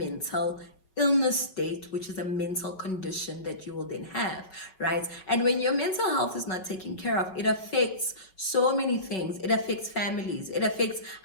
illness state, which is a mental condition that you will then have, right? And when your mental health is not taken care of, it affects so many things. It affects families, it affects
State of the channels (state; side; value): late; right; 5.3 ms